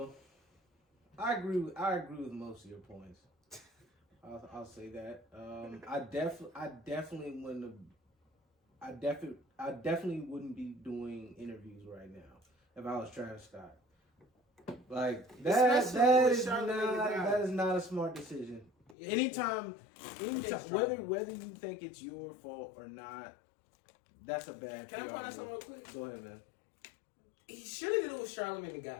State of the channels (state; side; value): drops out; right; at 18.9 s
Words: I agree with most of your points. I'll say that. I definitely wouldn't be doing interviews right now. if I was Travis Scott. Like that is not a smart decision. Yeah. Anytime, whether you think it's your fault or not, that's a bad. Can I point out something real quick? Go ahead, man. He should have did it with Charlamagne the